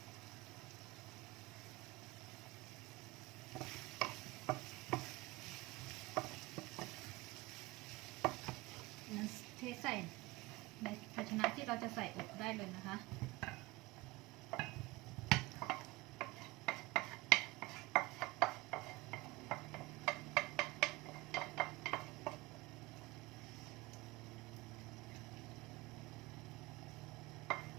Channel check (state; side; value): quieter; left; 21.1 dB